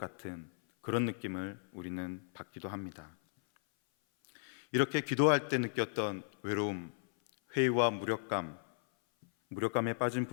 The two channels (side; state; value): right; silent; 54 dB below the other